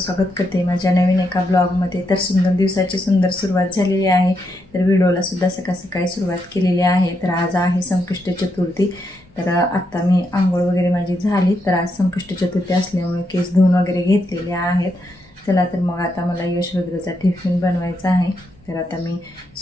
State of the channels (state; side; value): normal; both; correlation 0.81